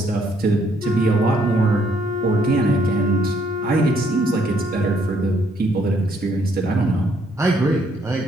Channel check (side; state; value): both; normal; correlation 0.69